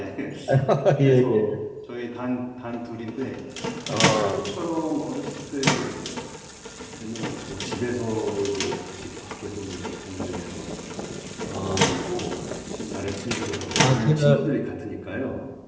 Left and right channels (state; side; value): identical; both; correlation 1.00